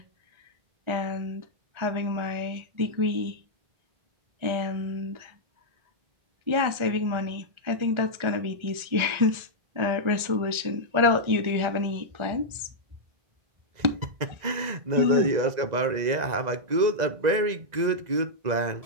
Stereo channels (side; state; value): left; late; 1.4 ms